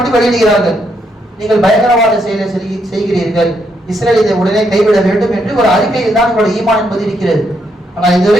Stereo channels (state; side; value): normal; both; correlation 0.77